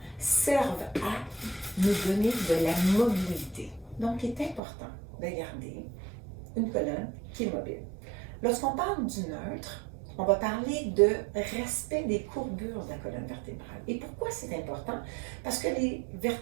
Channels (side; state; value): left; drops out; at 4.6 s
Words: servent à nous donner de la mobilité. Donc, il est important de garder une colonne qui est mobile. Lorsqu'on parle du neutre, on va parler de respect des courbures de la colonne vertébrale. Et pourquoi c'est important? Parce que les